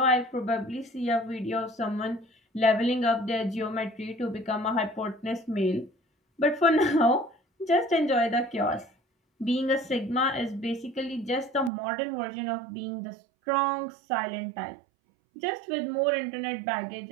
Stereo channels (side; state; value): left; drops out; at 11.7 s